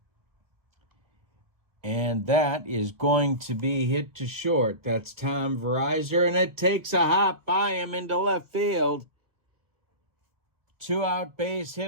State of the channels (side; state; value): left; late; 1.4 ms